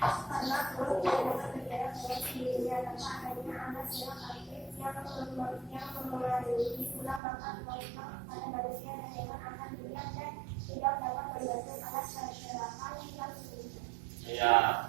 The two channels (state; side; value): drops out; left; at 7.2 s